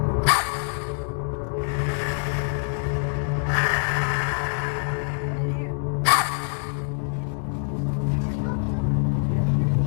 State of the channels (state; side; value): silent; right; 62 dB below the other